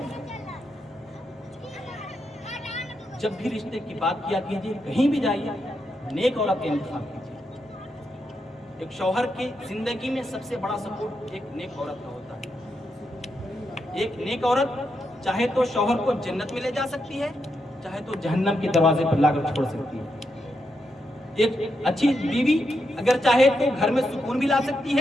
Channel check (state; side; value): normal; both; correlation 0.83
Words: جب بھی رشتے کی بات کیا کیجئے، کہیں بھی جائیے نیک عورت کا انتخاب کیجئے۔ ایک شوہر کی زندگی میں سب سے بڑا سپورٹ ایک نیک عورت کا ہوتا ہے۔ ایک نیک عورت چاہے تو شوہر کو جنت میں لے جا سکتی ہے، چاہے تو جہنم کے دروازے پر لا کر چھوڑ سکتی ہے۔ ایک اچھی بیوی اگر چاہے تو گھر میں سکون بھی لا سکتی